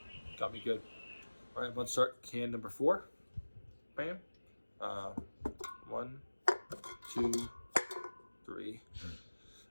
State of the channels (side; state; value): both; inverted; correlation -1.00